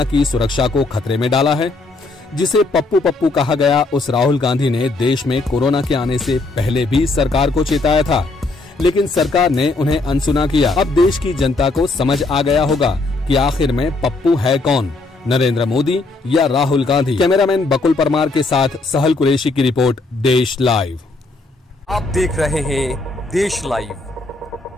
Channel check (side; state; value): right; quieter; 3.3 dB